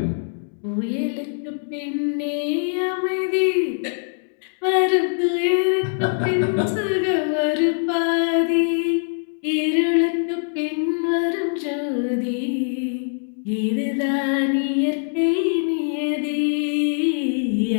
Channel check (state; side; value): silent; right; 64 dB below the other